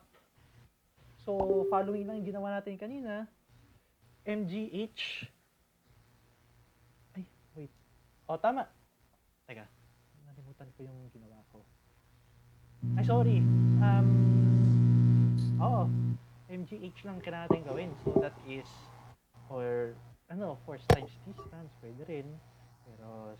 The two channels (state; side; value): identical; both; correlation 1.00